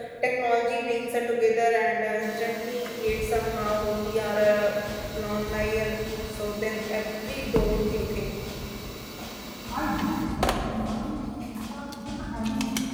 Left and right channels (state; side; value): identical; both; correlation 1.00